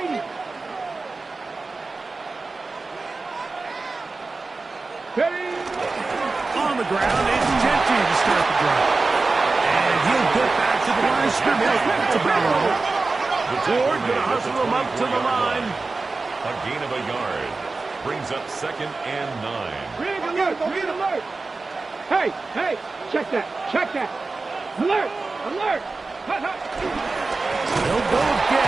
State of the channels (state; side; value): quieter; left; 3.7 dB